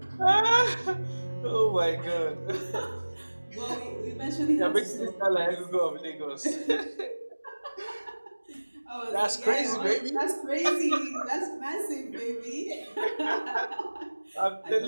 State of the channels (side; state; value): both; inverted; correlation -1.00